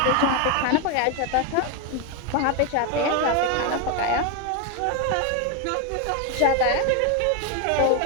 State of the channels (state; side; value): different; both; correlation 0.02